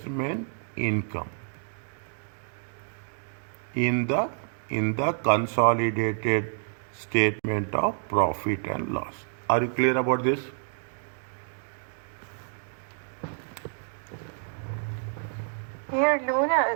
In the consolidated statement of profit and loss. Are you clear about this? Here, Luna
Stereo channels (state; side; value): silent; left; 59 dB below the other